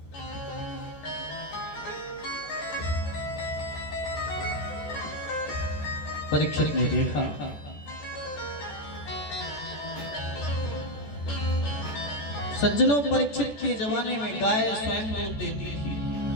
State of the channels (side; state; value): right; late; 14 ms